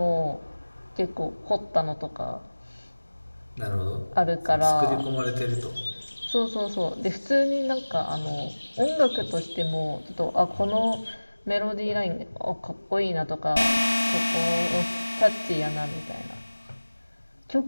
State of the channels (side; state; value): both; inverted; correlation -1.00